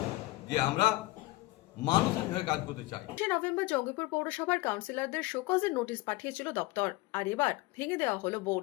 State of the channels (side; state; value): right; quieter; 19.4 dB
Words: যে আমরা মানুষের হয়ে কাজ করতে চাই। নভেম্বর জঙ্গিপুর পৌরসভার কাউন্সিলরদের শোকজের নোটিশ পাঠিয়েছিল দপ্তর, আর এবার ভেঙে দেওয়া হলো